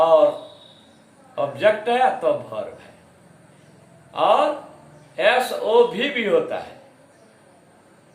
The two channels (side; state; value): both; identical; correlation 1.00